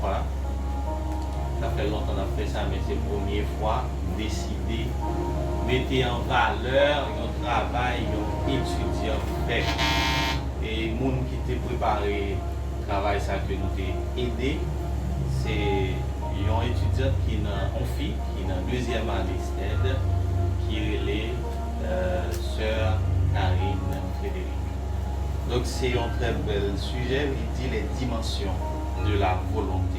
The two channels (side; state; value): both; identical; correlation 1.00